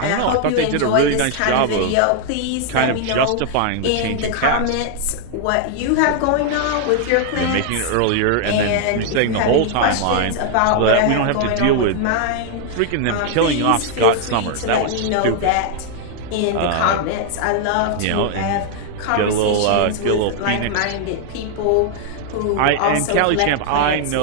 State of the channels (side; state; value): both; different; correlation 0.00